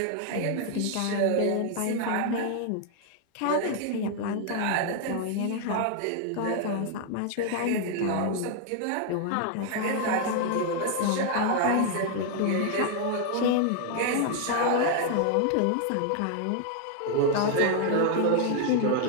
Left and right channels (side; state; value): both; different; correlation 0.00